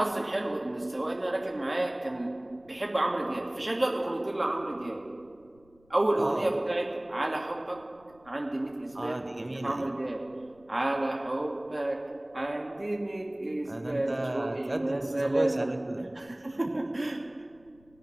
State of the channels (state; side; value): noise; left; rumble, 29 dB below the sound